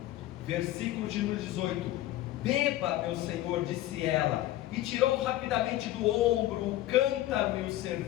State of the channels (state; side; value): quieter; right; 14.8 dB